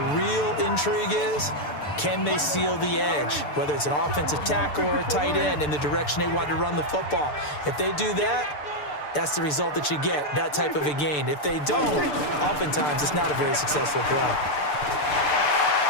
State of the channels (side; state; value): right; late; 6.8 ms